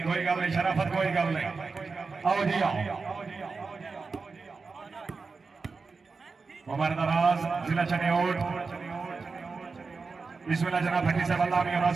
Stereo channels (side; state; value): left; quieter; 4.5 dB